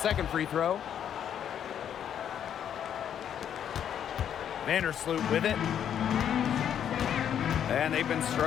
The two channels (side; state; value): right; quieter; 9.3 dB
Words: free throw. Vandersloot with it. And they've been